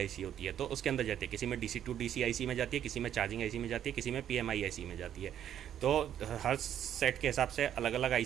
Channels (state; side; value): quieter; left; 10.2 dB